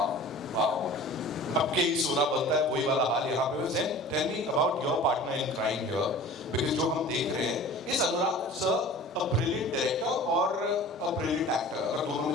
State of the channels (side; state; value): both; normal; correlation 0.41